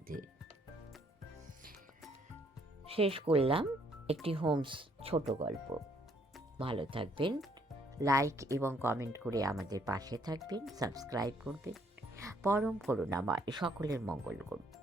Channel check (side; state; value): both; normal; correlation 0.67